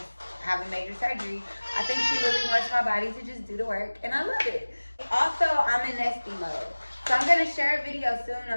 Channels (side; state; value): both; inverted; correlation -1.00